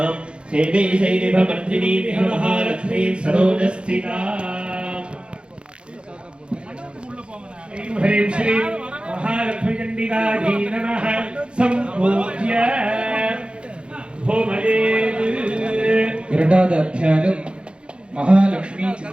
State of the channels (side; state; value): left; late; 0.056 ms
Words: सेवे शैरिभमर्दिनी महालक्ष्मी सरोजस्थिता ह्रीं श्री महालक्ष्मी चण्डिकायै नमः सम्पूज्य होमयेत् இரண்டாவது அத்தியாயம் மகாலட்சுமி